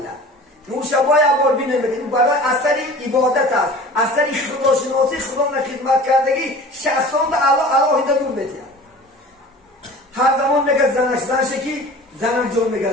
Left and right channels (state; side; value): normal; both; correlation 0.41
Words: نور شبای عبار بینه میکنن برای اثری عبادت است اثری خدا شناسی خدا خدمت کردگی شخصان در الله هیده نور نتیه هر زمان میگه زنش که زنم جان